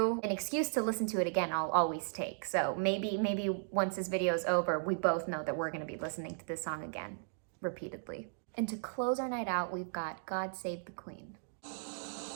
An excuse to listen to it again I'll always take. So maybe once this video is over, we both know that we're gonna be listening to this song again, repeatedly. And to close our night out, we've got God Save the Queen.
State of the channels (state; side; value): silent; left; digital silence